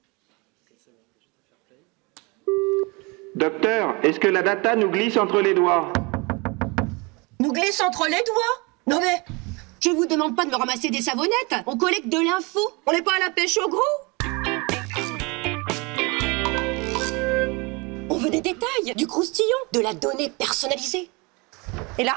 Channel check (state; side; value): quieter; left; 27.8 dB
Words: Docteur, est-ce que la data nous glisse entre les doigts? Nous glisse entre les doigts? Non mais, je vous demande pas de me ramasser des savonnettes. On collecte de l'info. On n'est pas à la pêche au gros. On veut des détails, du croustillant, de la donnée personnalisée. Et